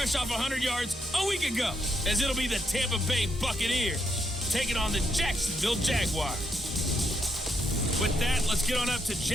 off 100 yards a week ago, as it'll be the Tampa Bay Buccaneers taking on the Jacksonville Jaguars. With that, let's get on up to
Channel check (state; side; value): normal; both; correlation 0.78